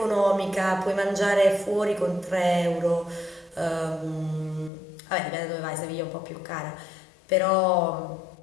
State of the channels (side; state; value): right; drops out; at 4.7 s